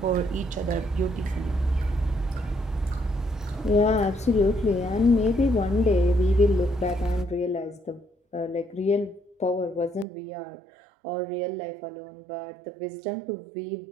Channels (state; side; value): drops out; left; at 10.1 s